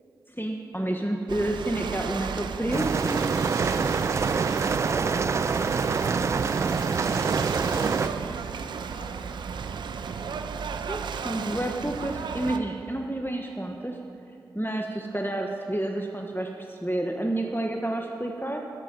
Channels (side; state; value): left; quieter; 3.5 dB